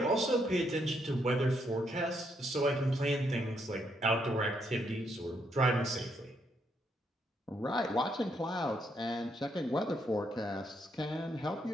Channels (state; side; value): normal; both; correlation 0.75